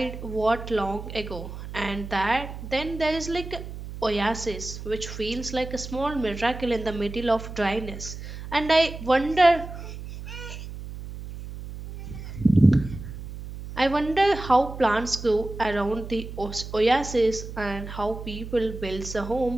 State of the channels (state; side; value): noise; right; hum, 10 dB below the sound